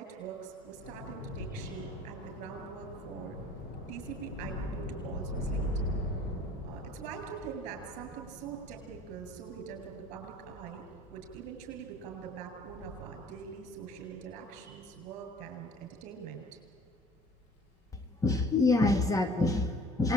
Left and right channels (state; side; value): normal; both; correlation 0.51